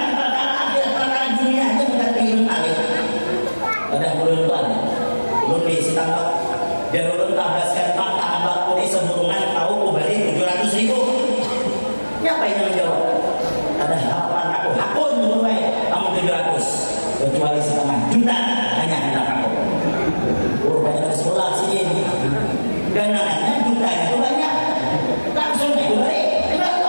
perkara akhirat perkara dunia aja mengerti ilmu alih. Ada ulun itu ada. Ulun di Sitambak dan ulun tabaskan fakta ambak kodi seburungan tahu kubali 700.000. Siapa yang menjawab? Ada harapan aku hakun mulai kamu 700 kecuali setengah juta hanya hendak aku banyak dari sekolah sini dan namanya juta itu banyak langsung itu balik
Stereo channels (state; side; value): inverted; both; correlation -1.00